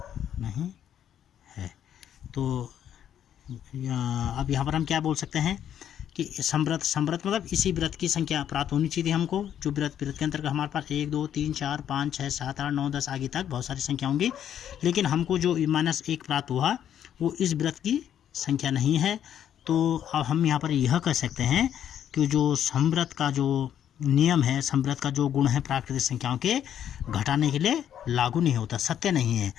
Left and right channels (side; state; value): right; quieter; 9.9 dB